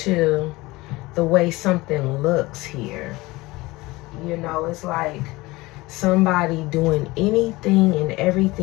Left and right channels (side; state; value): right; quieter; 21.0 dB